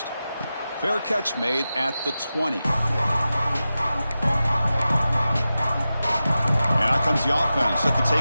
Fair catch made at the 20. And out comes the offense set to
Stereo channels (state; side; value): inverted; both; correlation -0.93